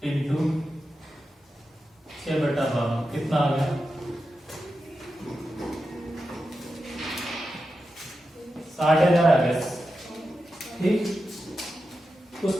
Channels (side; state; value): both; normal; correlation 0.90